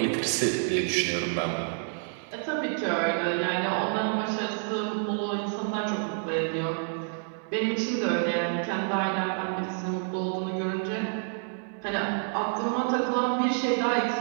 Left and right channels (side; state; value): left; silent; 59 dB below the other